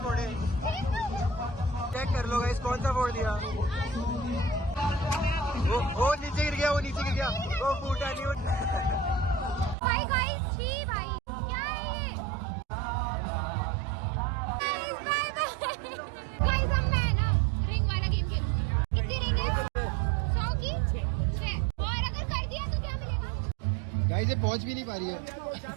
फोड़े। चेक कर लो गाइस कौन सा फोड़ दिया। वो नीचे गिर गया, वो फूटा नहीं। भाई गाइस छी भाई क्या है ये? बाय बाय गाइस हम मैं ना रिंग वाला गेम खेलूंगी। कितनी रिंग है? 100 की 6 और अगर कर दिया तो क्या मिलेगा? गाइस ये पहुंच भी नहीं पा रही है।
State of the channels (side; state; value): left; drops out; at 9.8 s